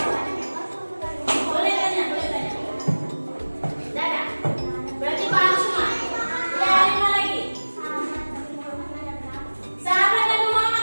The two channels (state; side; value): inverted; both; correlation -1.00